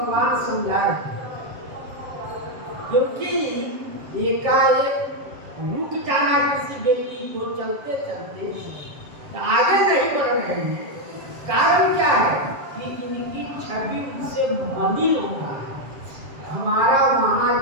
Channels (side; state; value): left; late; 7.3 ms